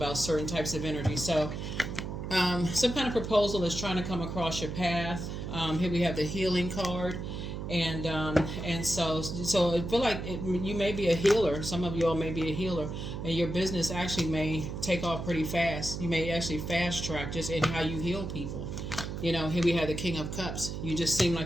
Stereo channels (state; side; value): noise; right; hum, 6 dB below the sound